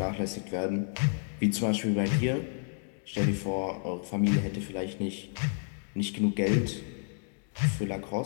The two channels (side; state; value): right; silent; 57 dB below the other